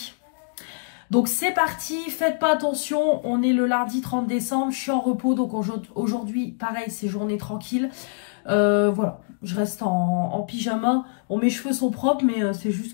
Donc c'est parti, faites pas attention, on est le lundi 30 décembre, je suis en repos, donc aujourd'hui, pareil, c'est journée tranquille. Voilà, je reste en pyjama. Bon, mes cheveux sont propres, mais c'est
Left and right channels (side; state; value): right; silent; digital silence